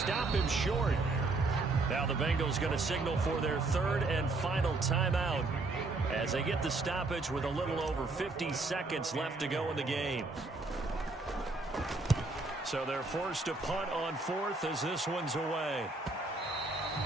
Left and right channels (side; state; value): left; quieter; 3.3 dB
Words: him short. Now the Bengals going to signal for their third and final timeout as they get the stoppage with a little over 50 seconds left to go in the game. So they're forced to punt on fourth as this one's away.